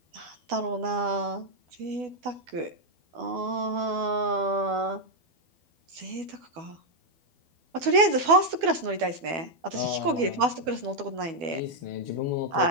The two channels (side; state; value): left; late; 12 ms